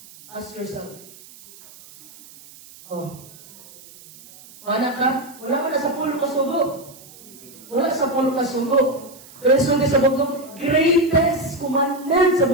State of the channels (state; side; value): noise; right; hiss, 21 dB below the sound